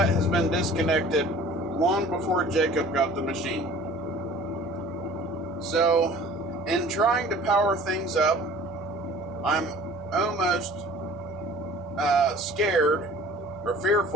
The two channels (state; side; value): normal; both; correlation 0.47